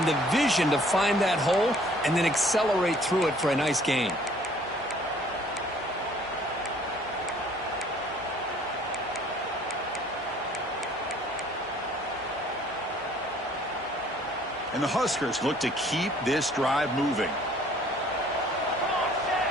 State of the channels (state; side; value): normal; both; correlation 0.57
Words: the vision to find that hole and then accelerate through it for a nice gain. And the Huskers look to keep this drive moving.